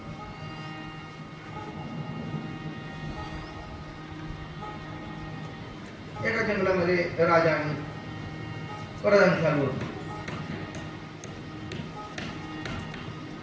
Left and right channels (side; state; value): both; identical; correlation 1.00